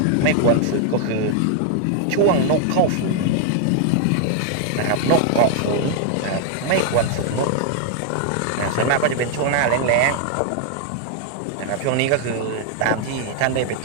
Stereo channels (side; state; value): both; different; correlation 0.00